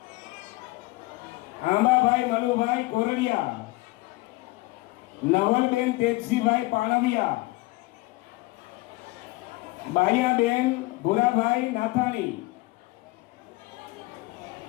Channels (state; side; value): quieter; right; 21.5 dB